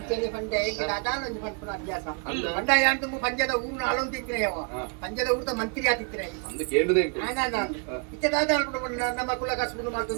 ಪಂಡ ಹೇಗಿಲ್ಲ ಅದಾನೊಂದು ಪಂಪನ ಅಭ್ಯಾಸ ಅಲ್ಲ. ಪಂಡ ಯಾನ್ ತುಂಬ ಪಂಜದ ಊರ್ನ ಆಳೊಂದು ತಿಕ್ಕಿನ ಯಾವ ಪಂಜದ ಊರ್ದ ಮಂತ್ರಿ ಆತಿತ್ತಿನ ಅಂದು ಕೇಳುದೇ ಇತ್ತದಾದ ನಮ್ಮ ಕುಲ ಕಸ್ಬುದು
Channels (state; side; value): quieter; left; 36.0 dB